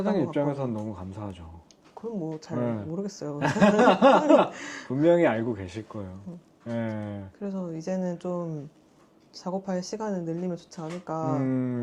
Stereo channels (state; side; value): identical; both; correlation 1.00